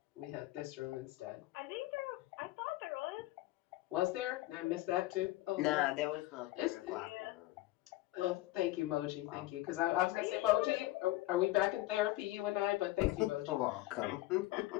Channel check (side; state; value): right; quieter; 17.5 dB